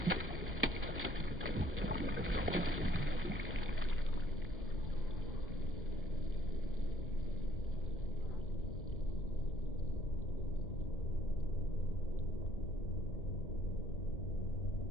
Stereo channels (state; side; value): normal; both; correlation 0.62